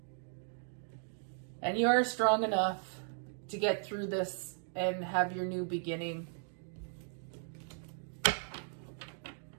And you are strong enough to get through this and have your new beginning.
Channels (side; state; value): left; silent; 53 dB below the other